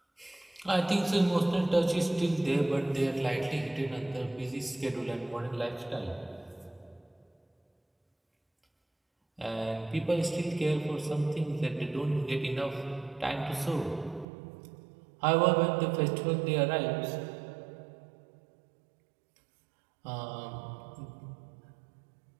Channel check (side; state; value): left; drops out; at 14.2 s